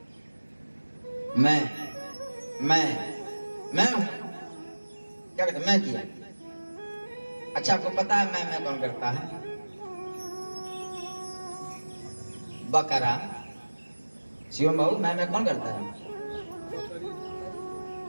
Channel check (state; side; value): inverted; both; correlation -1.00